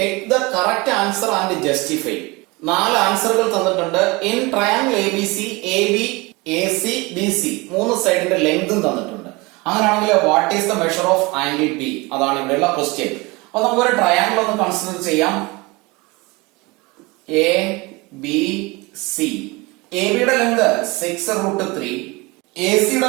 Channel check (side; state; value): left; quieter; 24.2 dB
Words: the correct answer and justify. 4 ആൻസറുകൾ തന്നിട്ടുണ്ട്. In triangle ABC AB AC BC 3 സൈഡിന്റെ ലെങ്തും തന്നിട്ടുണ്ട്. അങ്ങനെയാണെങ്കിൽ what is the measure of angle B? അതാണ് ഇവിടെയുള്ള ക്വസ്റ്റ്യൻ. അപ്പൊ നമുക്കൊരു ട്രയാംഗിൾ ഒന്ന് കൺസിഡർ ചെയ്യാം. ABC AB യുടെ ലെങ്ത് 6√3, AC